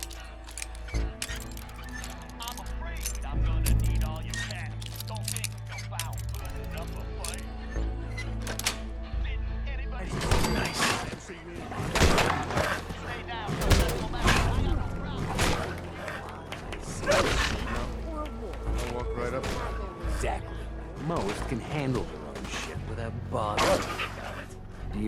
I'll walk right up. Exactly. Most can handle their own shit without bothering. Do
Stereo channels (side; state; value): both; identical; correlation 1.00